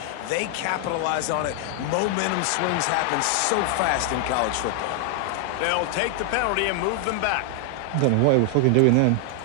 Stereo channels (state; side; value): different; both; correlation 0.00